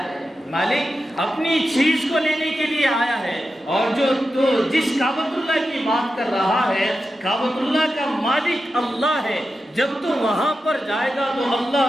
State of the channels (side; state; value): both; normal; correlation 0.90